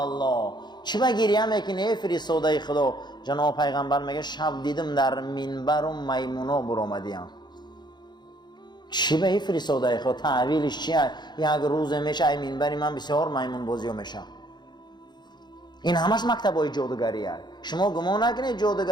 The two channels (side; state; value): right; late; 0.21 ms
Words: چی به گریه میکنی ای فرستاده خدا؟ جناب پیغمبر میگه شب دیدم در منبر و میمونا برآمدیم. چی به ای فرستاده خدا؟ تعویلش چیه؟ یک روز میشه ای منبری من بسیار میمون بازی میشه. این همش مکتبای جادوگری است. شما گمان نکنید